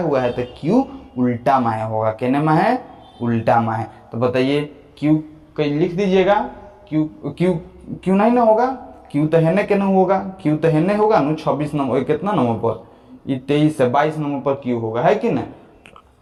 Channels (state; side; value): identical; both; correlation 1.00